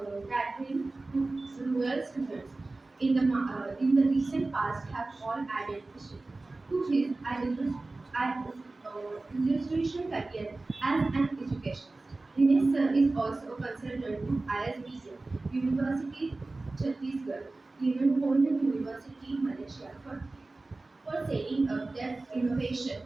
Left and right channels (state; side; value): quieter; left; 3.2 dB